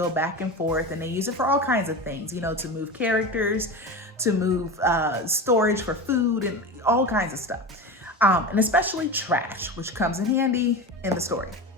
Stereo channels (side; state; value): both; normal; correlation 0.26